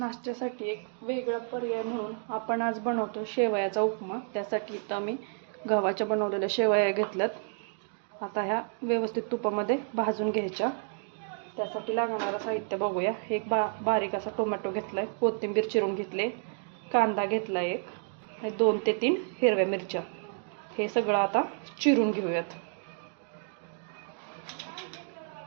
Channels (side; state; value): left; silent; 58 dB below the other